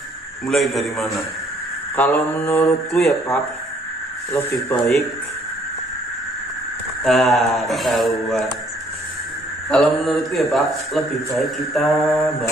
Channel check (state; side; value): normal; both; correlation 0.63